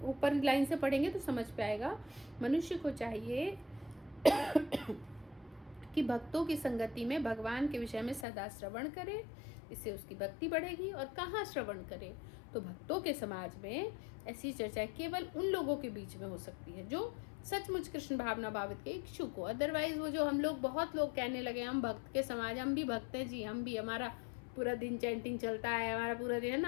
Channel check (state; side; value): drops out; right; at 8.2 s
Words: ऊपर लाइन से पढ़ेंगे तो समझ पे आएगा। मनुष्य को चाहिए कि भक्तों की संगति में भगवान के विषय में सदा श्रवण करे, इससे उसकी भक्ति बढ़ेगी। और कहाँ श्रवण करे? तो भक्तों के समाज में ऐसी चर्चा केवल उन लोगों के बीच में हो सकती है जो सचमुच कृष्ण भावना भावित के इच्छुक हो। अदरवाइज वो जो हम लोग, बहुत लोग कहने लगे हम भक्त के समाज, हम भी भक्त हैं जी, हम भी, हमारा पूरा दिन चैंटिंग चलता है, हमारा पूरा दिन, है